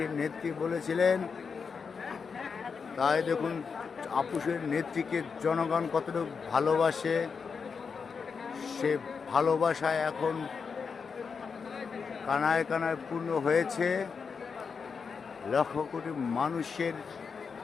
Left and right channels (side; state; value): right; quieter; 5.6 dB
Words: নেত্রী বলেছিলেন। তাই দেখুন আপোষের নেত্রীকে জনগণ কতটুকু ভালোবাসে, সে ভালোবাসায় এখন কানায় কানায় পূর্ণ হয়েছে। লক্ষ কোটি মানুষের